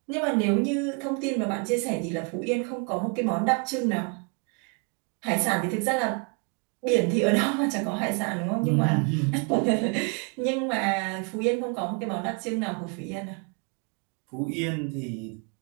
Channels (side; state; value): left; quieter; 35.9 dB